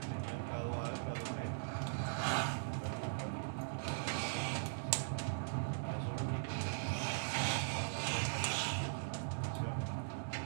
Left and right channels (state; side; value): silent; left; digital silence